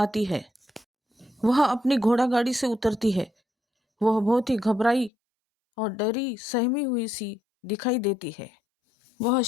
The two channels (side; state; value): right; drops out; at 5.1 s